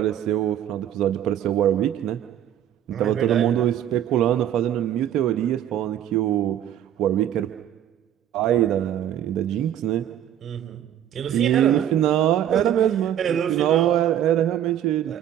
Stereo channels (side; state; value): left; quieter; 10.7 dB